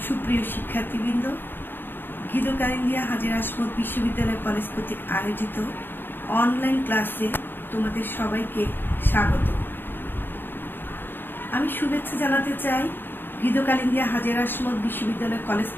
সুপ্রিয় শিক্ষার্থীবৃন্দ, গীতকালিন্দিয়া হাজী আসমত বিশ্ববিদ্যালয় কলেজ কর্তৃক আয়োজিত অনলাইন ক্লাসে তোমাদের সবাইকে স্বাগত। আমি শুভেচ্ছা জানাতে চাই গীতকালিন্দিয়া হাজী আসমত বিশ্ববিদ্যালয় কলেজ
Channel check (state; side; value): late; right; 0.098 ms